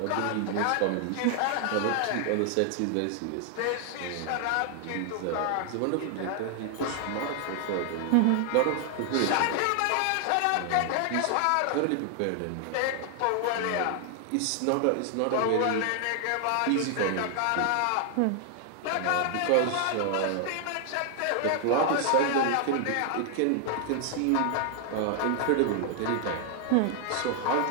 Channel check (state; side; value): different; both; correlation 0.00